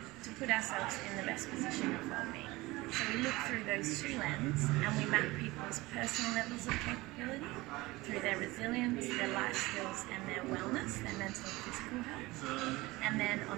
to put ourselves in the best position of well-being. So we look through those two lenses and we map people's personal levels of capability through their resilience, their life skills and their wellness, their mental and physical health. And then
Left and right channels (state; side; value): quieter; left; 20.8 dB